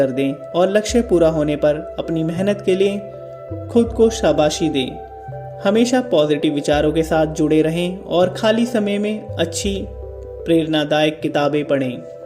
दें और लक्ष्य पूरा होने पर अपनी मेहनत के लिए खुद को शाबाशी दें। हमेशा पॉजिटिव विचारों के साथ जुड़े रहें और खाली समय में अच्छी प्रेरणादायक किताबें पढ़ें।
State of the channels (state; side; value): identical; both; correlation 1.00